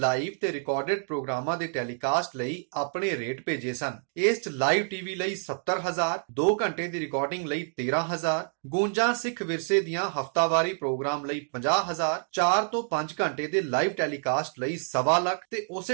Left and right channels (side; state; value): left; silent; 59 dB below the other